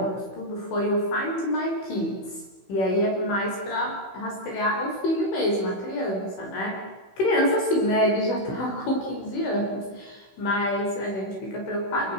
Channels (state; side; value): late; right; 16 ms